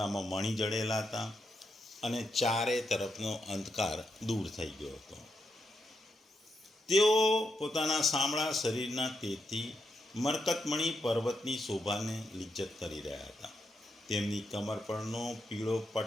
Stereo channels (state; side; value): normal; both; correlation 0.83